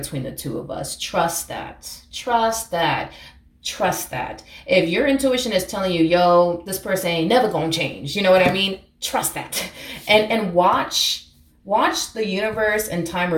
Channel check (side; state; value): both; identical; correlation 1.00